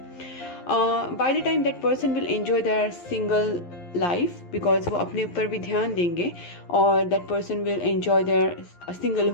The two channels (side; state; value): right; late; 11 ms